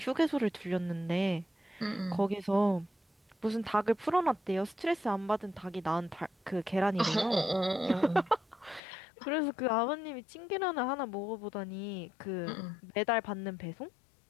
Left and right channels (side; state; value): right; drops out; at 8.8 s